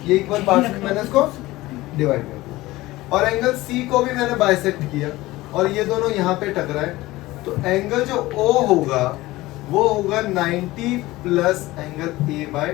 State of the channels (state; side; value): quieter; right; 18.6 dB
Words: ये इक्वल पार्ट्स में मैंने इसको डिवाइड कर दिया, और एंगल सी को भी मैंने बाइसेक्ट किया और ये दोनों यहाँ पे टकराए, तो एंगल जो ओ होगा वो होगा 90 plus angle A